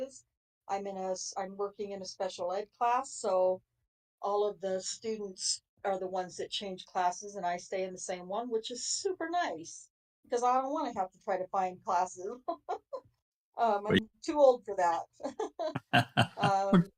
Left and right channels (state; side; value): identical; both; correlation 1.00